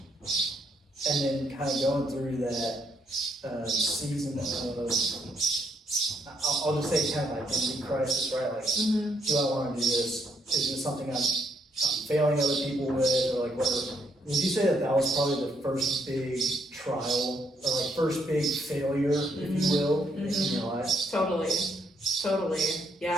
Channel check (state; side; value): normal; both; correlation 0.73